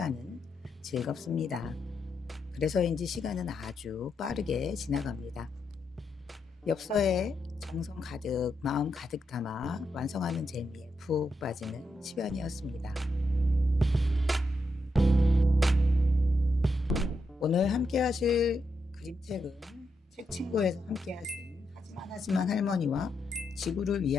즐겁습니다. 그래서인지 시간은 아주 빠르게 지나갑니다. 엽서에 정성 가득, 마음 가득 담아 완성하는 재미에 푹 빠지는 시간이었습니다. 오늘 함께 하실 그림책은 책친구에서 함께 하신 하지만 할머니와 지구를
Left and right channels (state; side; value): normal; both; correlation 0.83